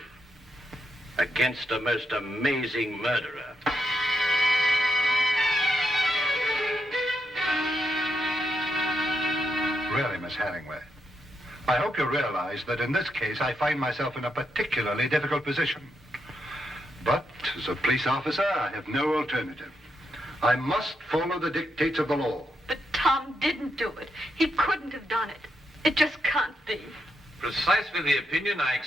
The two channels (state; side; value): normal; both; correlation 0.82